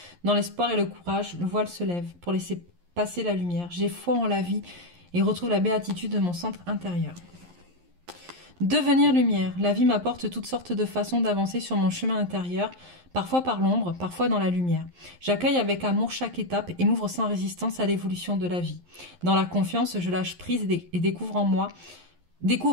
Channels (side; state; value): left; late; 11 ms